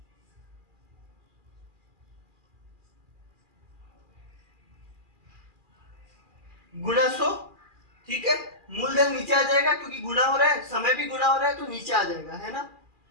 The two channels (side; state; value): left; late; 2.4 ms